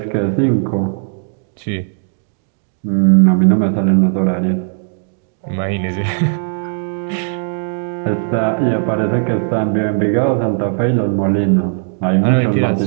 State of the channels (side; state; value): left; silent; digital silence